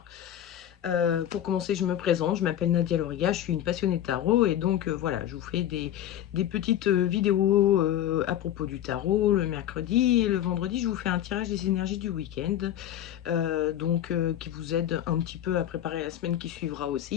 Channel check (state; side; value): quieter; right; 11.4 dB